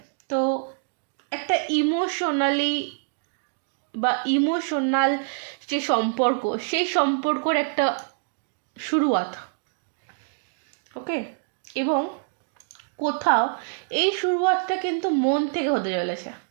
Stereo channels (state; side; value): silent; left; digital silence